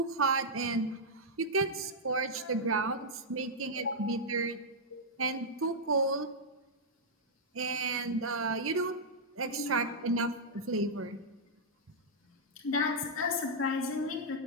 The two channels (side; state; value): both; normal; correlation -0.07